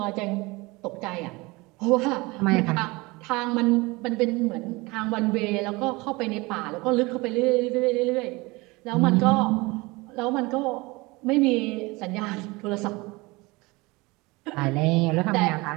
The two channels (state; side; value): quieter; left; 23.7 dB